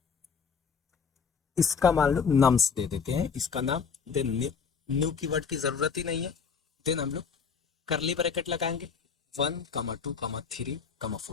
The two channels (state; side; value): quieter; right; 6.0 dB